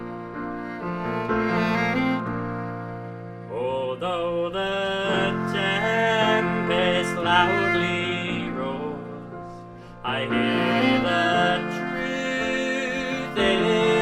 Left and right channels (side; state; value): both; identical; correlation 1.00